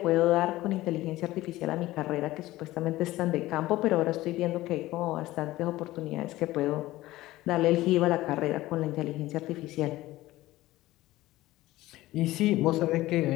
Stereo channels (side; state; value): right; quieter; 17.1 dB